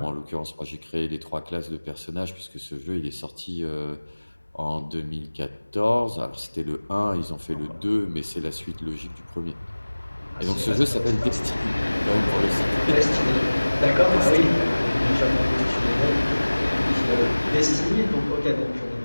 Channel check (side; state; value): both; inverted; correlation -1.00